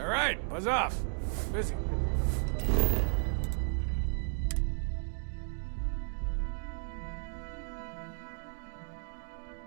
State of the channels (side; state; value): left; silent; digital silence